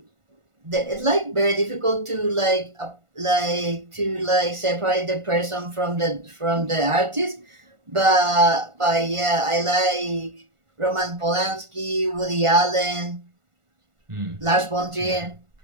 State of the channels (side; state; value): left; late; 1.5 ms